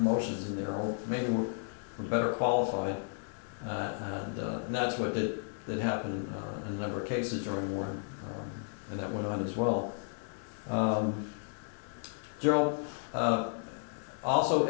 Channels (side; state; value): right; silent; digital silence